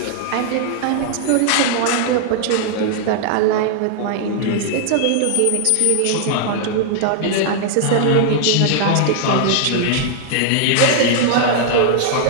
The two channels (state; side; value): different; both; correlation -0.01